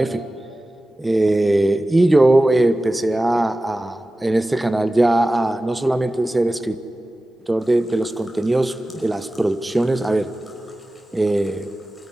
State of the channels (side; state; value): both; normal; correlation 0.95